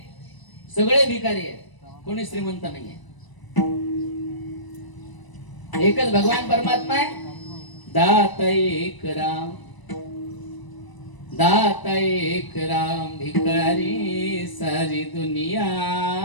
सगळे भिकारी आहेत, कोणी श्रीमंत नाही आहे. एकच भगवान परमात्मा आहे. दाता एक राम, दाता एक राम, भिकारी सारी दुनिया.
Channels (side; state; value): right; late; 1.0 ms